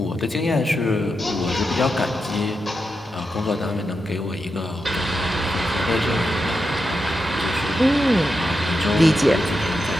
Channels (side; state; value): both; normal; correlation 0.87